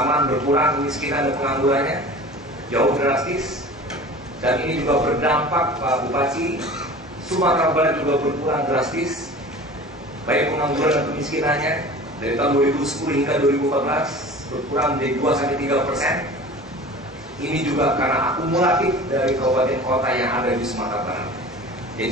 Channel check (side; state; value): both; normal; correlation 0.39